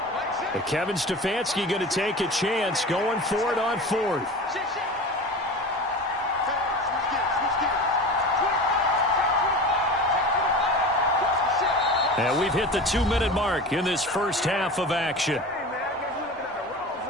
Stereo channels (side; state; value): both; normal; correlation 0.32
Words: But Kevin Stefanski going to take a chance, going for it on 4th. And we've hit the 2-minute mark in this first half of action.